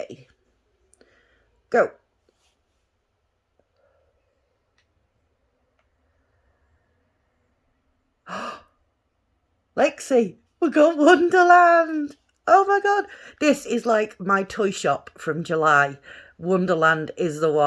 Go. Lexi, we got Wonderland. Oh my god. This is like my toy shop from July. Wonderland is the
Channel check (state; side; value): identical; both; correlation 1.00